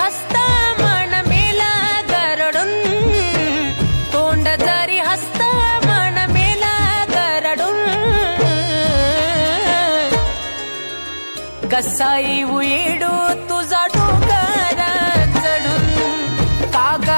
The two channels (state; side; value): inverted; both; correlation -1.00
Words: मन मेला गरडून तोंड जरी हसता मन मेला गरडून कसा येऊ येडू तुझा डोंगर चढून काग